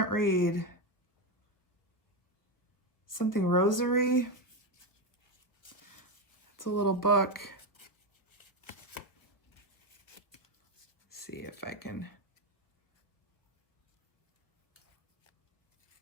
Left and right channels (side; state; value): right; late; 1.0 ms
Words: read. Something rosary. It's a little book. Let's see if I can.